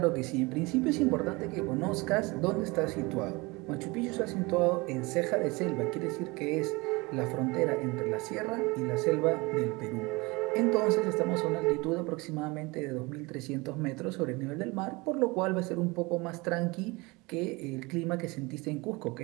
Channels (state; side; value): quieter; left; 24.9 dB